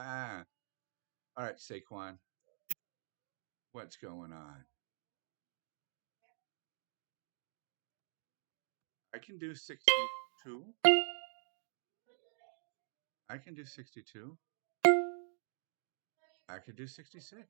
all right, Saquon, what's going on? I can do 62. I can do 62. I could do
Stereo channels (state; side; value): silent; left; digital silence